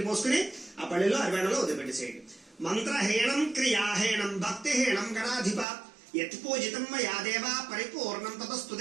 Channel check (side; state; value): left; drops out; at 5.7 s